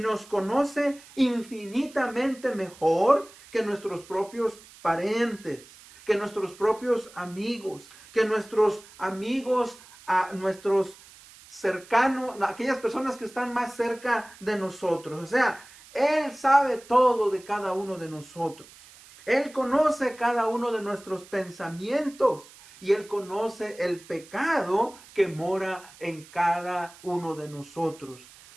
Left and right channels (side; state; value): right; noise; hiss, 22 dB below the sound